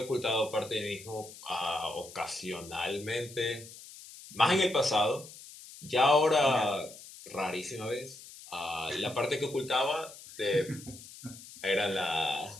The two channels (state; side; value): noise; left; hiss, 17 dB below the sound